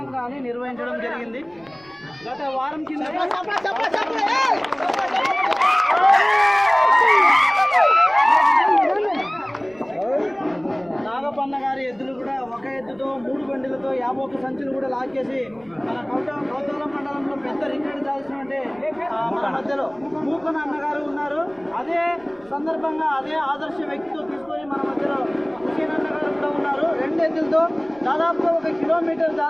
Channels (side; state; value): right; noise; rumble, 30 dB below the sound